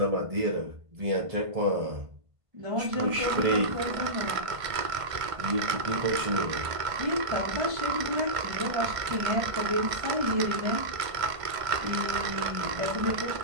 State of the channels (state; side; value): late; left; 1.5 ms